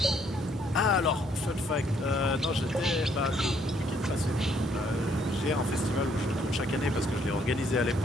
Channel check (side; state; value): both; normal; correlation 0.68